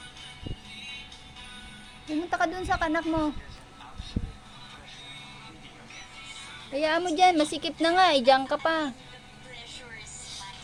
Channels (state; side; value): identical; both; correlation 1.00